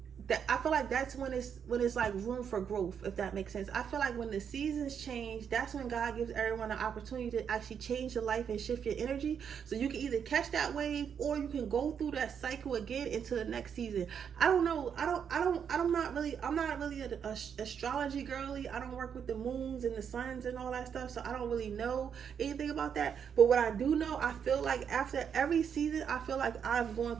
that. I feel like that's when it's like room for growth, if that makes sense. I feel like when the seasons change, that's when God gives everyone an opportunity to actually change your life and shift your energy, so you can either catch that wave or you can go through that cycle again into the next season. I don't know. I'm not really an astrology girly. I don't work with the moons and the suns and all that stuff, so I don't really know anything about that. But what I do know, I feel like after every season, I feel like I'm going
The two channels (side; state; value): left; quieter; 7.6 dB